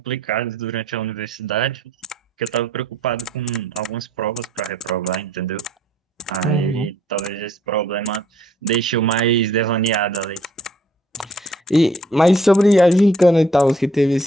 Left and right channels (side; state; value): both; normal; correlation 0.62